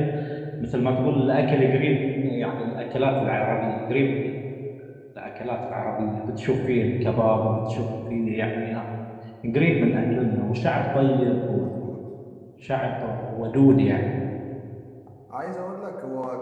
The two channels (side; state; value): both; identical; correlation 1.00